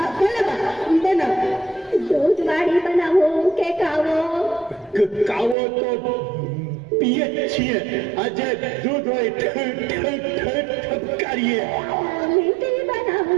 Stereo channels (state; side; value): drops out; left; at 5.6 s